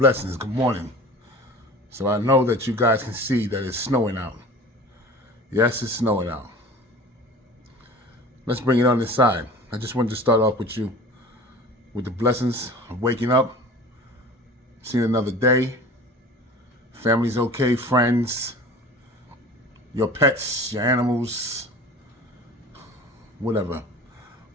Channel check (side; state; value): both; normal; correlation 0.40